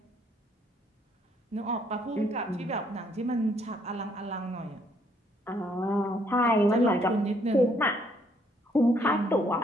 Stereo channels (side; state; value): both; normal; correlation 0.68